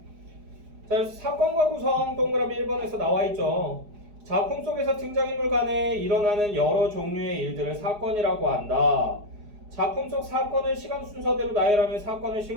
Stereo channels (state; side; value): late; left; 4.8 ms